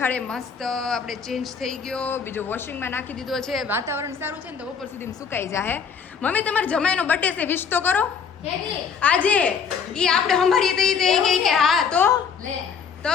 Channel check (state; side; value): quieter; right; 6.4 dB